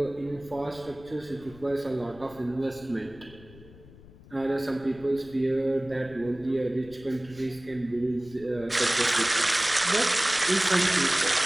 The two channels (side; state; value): left; noise; rumble, 21 dB below the sound